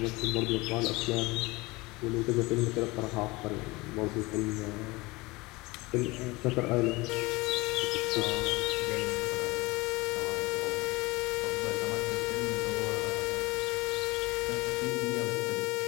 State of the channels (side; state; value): right; quieter; 22.8 dB